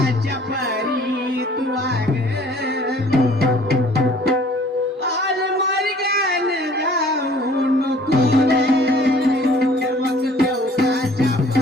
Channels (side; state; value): both; normal; correlation 0.54